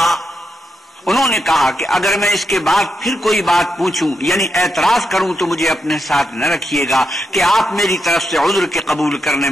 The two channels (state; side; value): normal; both; correlation 0.84